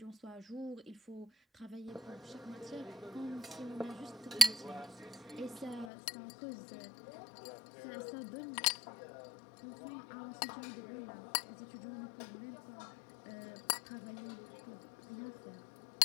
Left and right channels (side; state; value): right; drops out; at 5.9 s